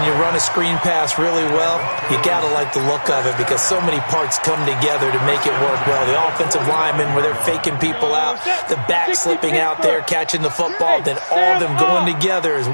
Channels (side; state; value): both; inverted; correlation -1.00